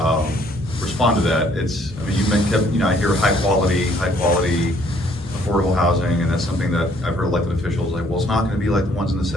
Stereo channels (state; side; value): normal; both; correlation 0.63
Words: respond to that. It's, I mean, I hear high quality, affordable housing, and that's something that I've heard elected officials like, well, it's not gonna be like the ones in the